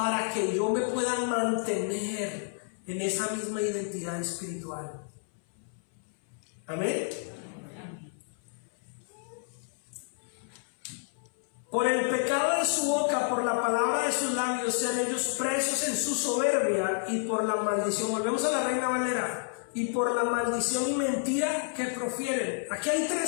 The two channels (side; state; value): right; silent; 58 dB below the other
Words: que yo me pueda mantener en esa misma identidad espiritual. Amén. Por el pecado de su boca, por la palabra de sus labios, sean ellos presos en su soberbia, y por la maldición. Volvemos a la Reina Valera. Y por la maldición y mentira que profieren. Aquí hay